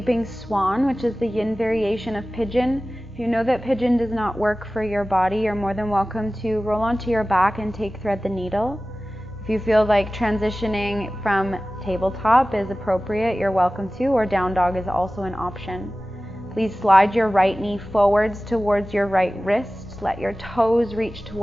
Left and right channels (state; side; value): normal; both; correlation 0.96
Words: swan, which is the yin variation of pigeon. If you know that pigeon does not work for your body, you're more than welcome to roll onto your back and take thread the needle. If you feel like transitioning from tabletop is appropriate, you're welcome to, or down dog is also an option. Please slide your right knee forwards towards your right wrist. Let your toes reach